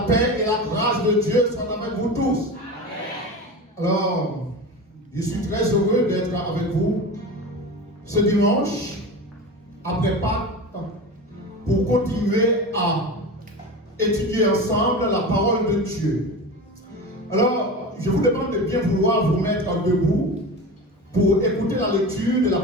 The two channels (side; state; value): both; normal; correlation 0.29